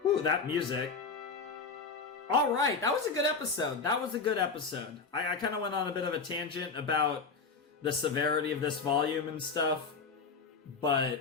Ooh, that music. Alright, that was a good episode. I kind of went on a bit of a tangent about the severity of this volume and stuff. But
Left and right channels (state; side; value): quieter; right; 4.8 dB